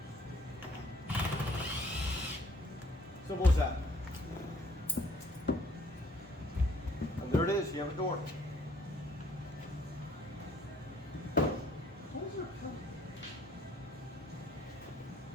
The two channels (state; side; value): normal; both; correlation 0.62